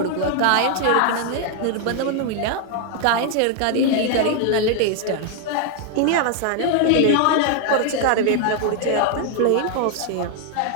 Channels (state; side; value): different; both; correlation 0.00